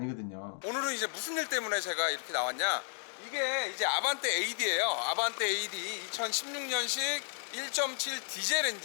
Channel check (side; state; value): right; silent; 56 dB below the other